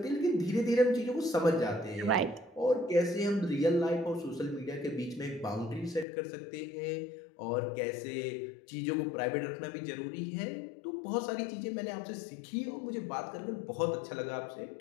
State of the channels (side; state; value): right; drops out; at 6.1 s